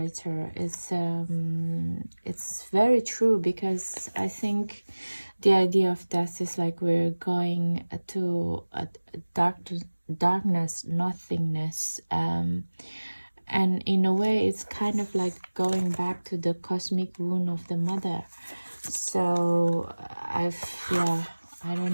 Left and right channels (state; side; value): inverted; both; correlation -1.00